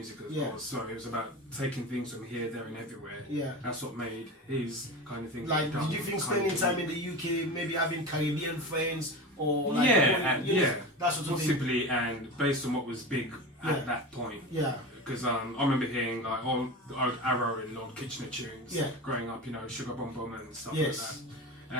as well. So it was about taking things from here, there, and everywhere. Yeah. That's what made his kind of thing. Like, did you think spending time in the UK, maybe having Caribbean friends, or like, that sort of thing? possibly, and based on what was big at that point. Yeah. Because I remember hearing like all the old Arrow and Lord Kitchener tunes growing up, you know, Sugar Bum Bum and stuff like that.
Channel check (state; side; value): normal; both; correlation 0.27